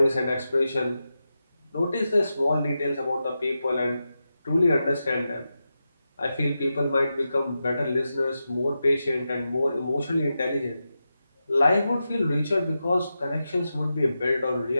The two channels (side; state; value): both; inverted; correlation -0.90